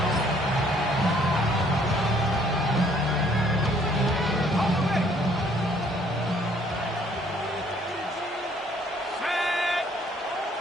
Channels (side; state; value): both; normal; correlation 0.62